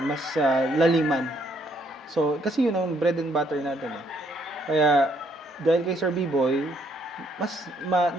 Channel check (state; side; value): normal; both; correlation 0.69